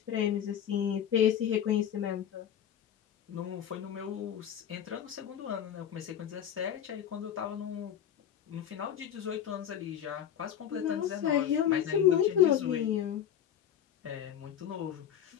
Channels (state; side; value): quieter; right; 9.6 dB